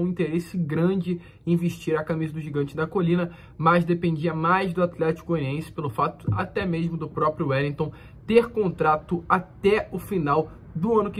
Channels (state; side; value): identical; both; correlation 1.00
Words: um interesse grande em vestir a camisa do Gigante da Colina, mas dependia mais do Atlético Goianiense pelo fato até mesmo do próprio Wellington ter contrato até o final do ano